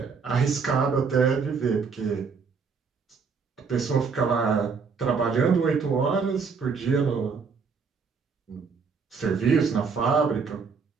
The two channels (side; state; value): left; quieter; 5.4 dB